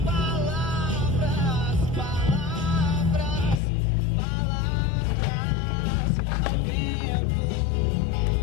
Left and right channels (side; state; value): right; drops out; at 3.6 s